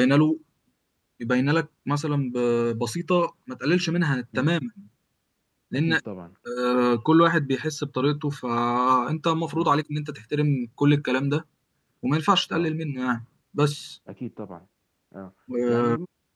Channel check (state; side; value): identical; both; correlation 1.00